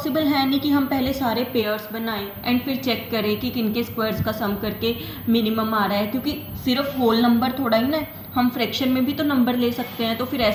है नहीं कि हम पहले सारे पेयर्स बनाएं एंड फिर चेक करें कि किनके स्क्वायर्स का सम करके मिनिमम आ रहा है, क्योंकि सिर्फ होल नंबर थोड़ा ही ना, हम फ्रैक्शन में भी तो नंबर ले सकते हैं। तो फिर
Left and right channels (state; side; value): identical; both; correlation 1.00